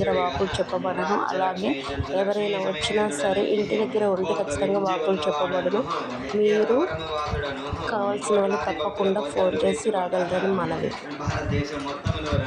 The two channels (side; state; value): both; identical; correlation 1.00